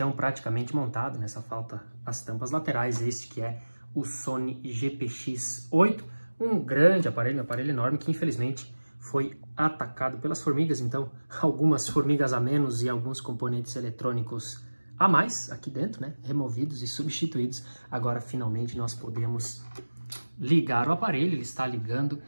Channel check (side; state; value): both; inverted; correlation -1.00